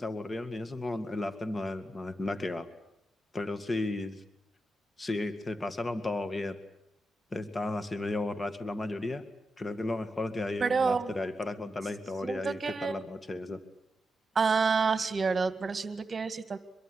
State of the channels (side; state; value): both; normal; correlation 0.88